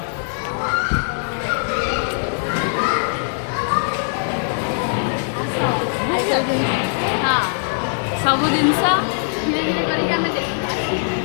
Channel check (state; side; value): silent; right; 65 dB below the other